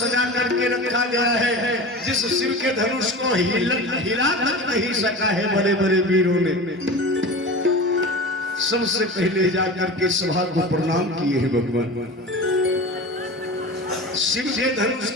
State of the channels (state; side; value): normal; both; correlation 0.31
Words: करके रखा गया है, जिस शिव के धनुष को हिला तक नहीं सका है बड़े बड़े वीरों ने। सबसे पहले जाकर के सभा को प्रणाम किए हैं भगवान। शिव के धनुष